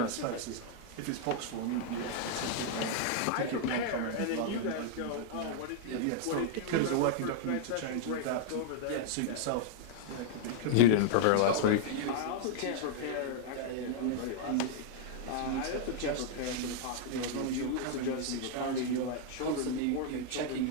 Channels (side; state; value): both; different; correlation -0.01